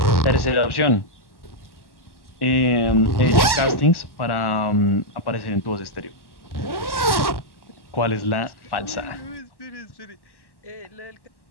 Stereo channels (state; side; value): late; right; 1.1 ms